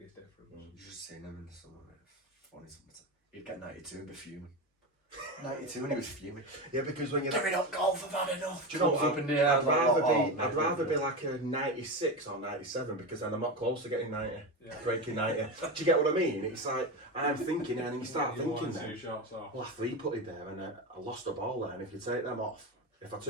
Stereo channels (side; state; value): both; normal; correlation 0.19